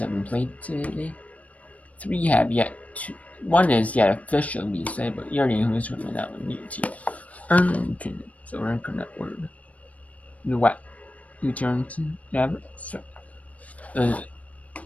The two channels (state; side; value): late; right; 0.067 ms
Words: have been played today. 3 have yet to. 1 is yet officially decided, but you already know who's going to win that one. UT Arlington. So we're going to word. The what? UT Arlington. Yeah, so